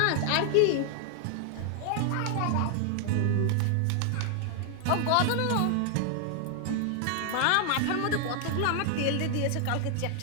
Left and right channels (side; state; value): both; different; correlation 0.00